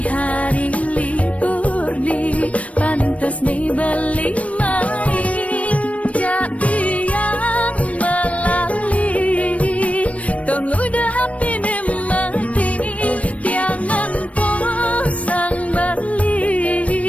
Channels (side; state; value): right; late; 0.065 ms